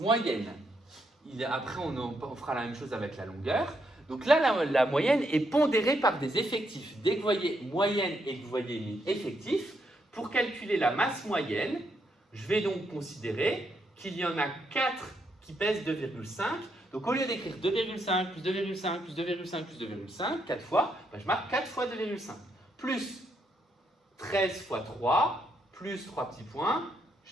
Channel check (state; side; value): normal; both; correlation 0.77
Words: Après, on fera la même chose avec la longueur. Donc là, la moyenne est pondérée par des effectifs. Dès que vous voyez moyenne et que vous voyez effectif, pour calculer la masse moyenne, je vais donc considérer qu'il y en a 4 qui pèsent 2,5. Donc au lieu d'écrire 2,5 plus 2,5 plus 2,5 plus 2,5, 4 fois, je marque 4 fois 2,5. Plus 13 fois 3, plus 3 petits points.